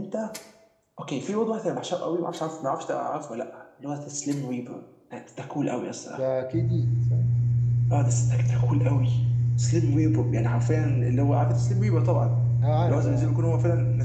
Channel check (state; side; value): identical; both; correlation 1.00